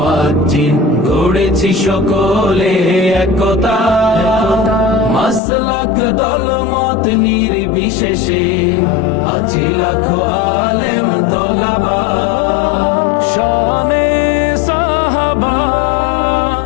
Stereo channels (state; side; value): drops out; right; at 5.4 s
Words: গড়েছি সকলে একতা, মাসলাক দলমত নির্বিশেষে আছি লাখো আলেম তোলাবা। শানে সাহাবা,